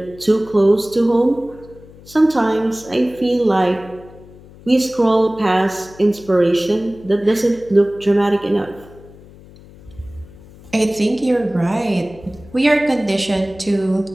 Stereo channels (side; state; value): left; noise; hum, 21 dB below the sound